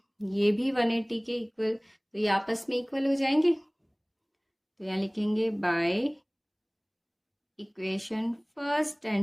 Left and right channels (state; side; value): identical; both; correlation 1.00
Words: ये भी 180 के इक्वल, तो ये आपस में इक्वल हो जाएंगे। तो यहाँ लिखेंगे by equation first